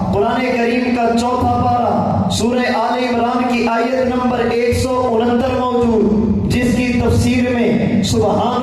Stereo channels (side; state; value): both; identical; correlation 1.00